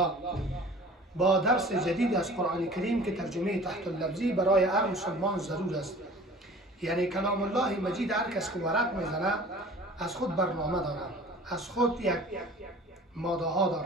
با درس جدید از قرآن کریم که ترجمه تحت اللفظی برای هر مسلمان ضرور است. یعنی کلام الله مجید هر کس که ورق میزنه از خود برنامه داره، از خود یک ماده ها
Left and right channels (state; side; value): normal; both; correlation 0.45